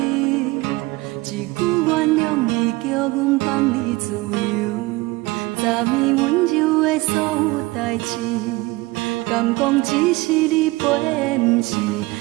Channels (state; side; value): quieter; left; 21.6 dB